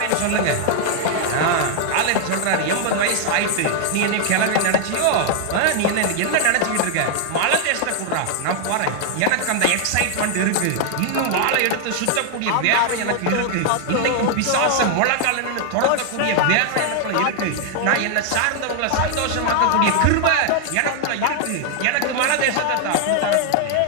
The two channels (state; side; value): different; both; correlation 0.00